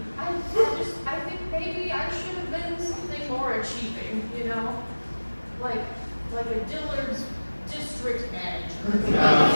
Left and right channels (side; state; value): both; inverted; correlation -1.00